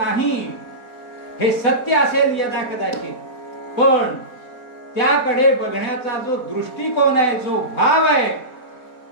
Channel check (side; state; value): right; late; 4.1 ms